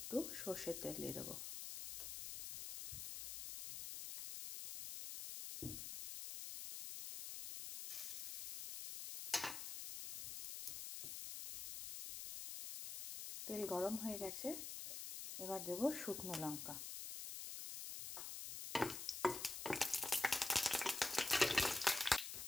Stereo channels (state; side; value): noise; left; hiss, 6 dB below the sound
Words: সর্ষের তেল দিয়ে দেবো। তেল গরম হয়ে গেছে, এবার দেব শুকনো লঙ্কা।